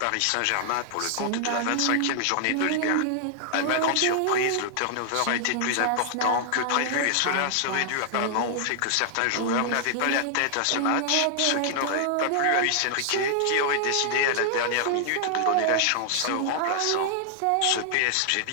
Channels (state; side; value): different; both; correlation 0.00